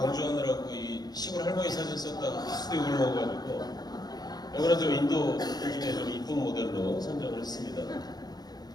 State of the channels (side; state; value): right; late; 0.19 ms